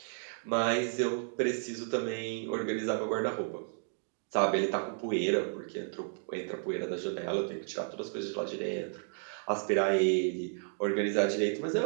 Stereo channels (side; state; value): left; silent; digital silence